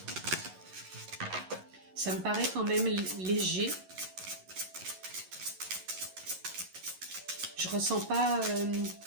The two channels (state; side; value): late; left; 11 ms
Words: Ça me paraît quand même léger. Je ressens pas